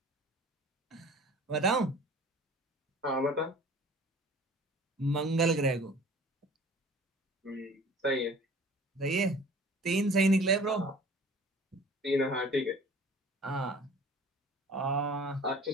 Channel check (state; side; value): normal; both; correlation 0.46